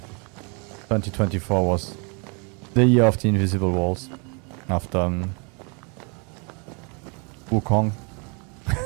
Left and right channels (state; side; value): quieter; left; 33.6 dB